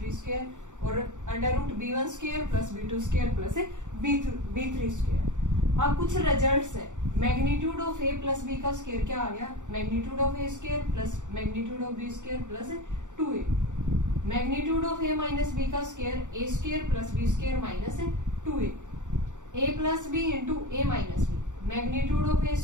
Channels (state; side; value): late; left; 0.85 ms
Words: square और under root b1 square plus b2 square plus b3 square. अब कुछ रिजल्ट्स है, magnitude of a plus b का स्क्वायर क्या आ गया, magnitude of a square plus magnitude of b square plus 2a। Magnitude of a minus b का square a square plus b square minus 2a। A plus b into a minus b, magnitude of a